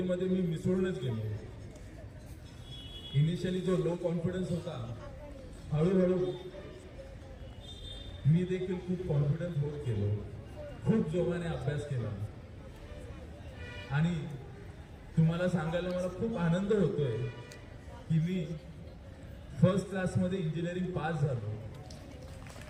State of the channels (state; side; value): identical; both; correlation 1.00